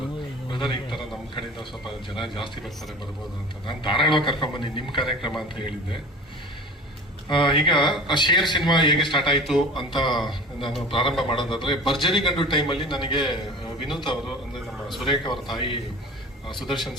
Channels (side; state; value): both; normal; correlation 0.37